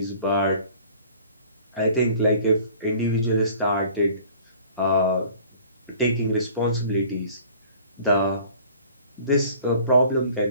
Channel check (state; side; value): inverted; both; correlation -0.50